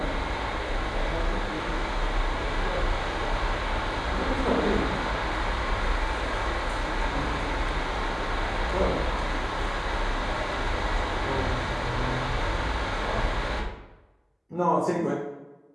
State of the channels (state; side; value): identical; both; correlation 1.00